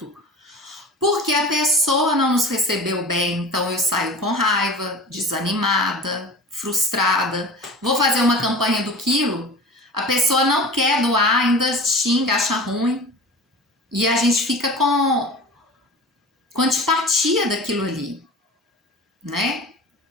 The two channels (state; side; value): normal; both; correlation 0.36